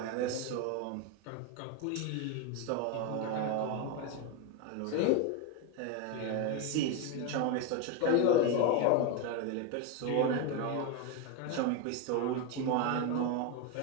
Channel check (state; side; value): different; both; correlation 0.02